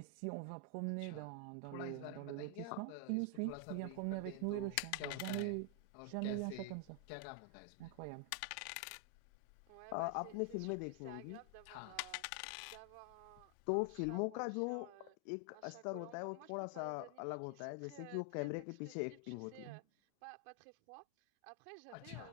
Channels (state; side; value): different; both; correlation 0.00